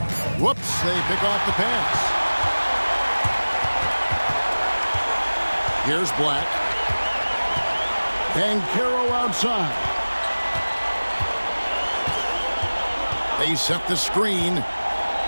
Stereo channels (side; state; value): both; inverted; correlation -1.00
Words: Whoops, they pick off the pass. Here's Black. Banchero outside. They set the screen